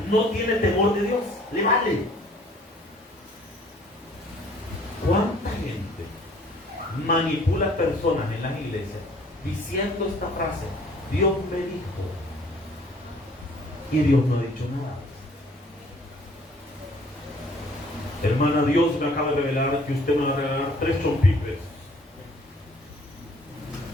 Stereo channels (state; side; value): normal; both; correlation 0.56